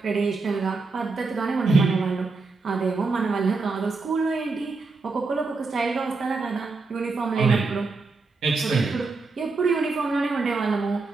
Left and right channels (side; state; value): left; quieter; 4.0 dB